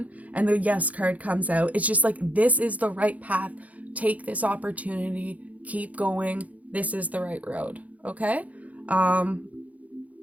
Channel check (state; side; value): late; left; 0.071 ms